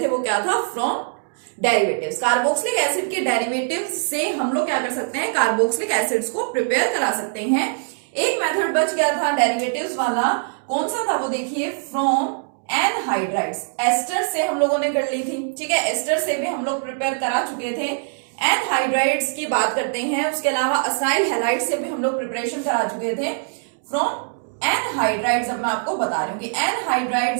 थे वो क्या था, फ्रॉम डेरिवेटिव्स। कार्बोक्सिलिक एसिड के डेरिवेटिव्स से हम लोग क्या कर सकते हैं, कार्बोक्सिलिक एसिड्स को प्रिपेयर करा सकते हैं। एक मेथड बच गया था डेरिवेटिव्स वाला, कौन सा था वो देखिए, फ्रॉम एनहाइड्राइड्स। एस्टर से हम लोगों ने कर ली थी, ठीक है, एस्टर से भी हम लोग प्रिपेयर करा चुके थे। एनहाइड्राइड्स की बात करते हैं, उसके अलावा असाइल हैलाइड से भी हम लोग प्रिपरेशन करा चुके थे। फ्रॉम एनहाइड्राइड्स अब मैं आपको बता रही हूँ कि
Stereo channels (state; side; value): silent; left; digital silence